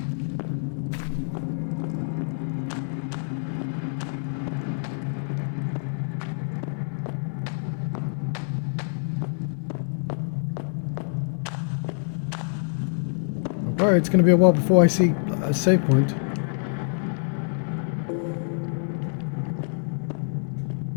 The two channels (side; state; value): right; silent; 55 dB below the other